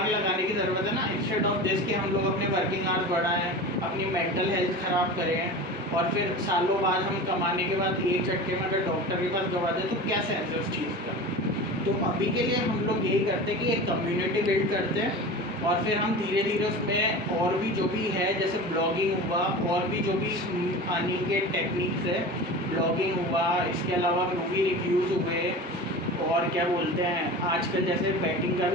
लगाने की ज़रूरत है ना, इंस्टेड ऑफ दिस कि हम लोग अपने वर्किंग आवर्स बढ़ाएं, अपनी मेंटल हेल्थ ख़राब करें और फिर सालों बाद हम कमाने के बाद एक झटके में अगर डॉक्टर के पास गवा दें तो क्या सेंस है उस चीज़ का। तो अभी के लिए हम लोग यही करते हैं कि एक कम्युनिटी बिल्ड करते हैं और फिर हम धीरे धीरे उसमें और भी जो भी है जैसे ब्लॉगिंग हुआ और भी जो भी अर्निंग के टेक्निक्स है, ब्लॉगिंग हुआ, इसके अलावा मूवी रिव्यूज़ हुए और क्या बोलते हैं आजकल जैसे बैटिंग का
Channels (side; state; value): both; normal; correlation 0.32